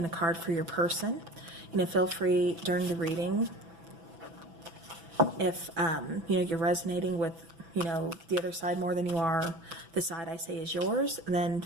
a card for your person. Feel free during the reading, if, you're resonating with the other side more than you are the side I say is yours, then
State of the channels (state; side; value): late; left; 6.0 ms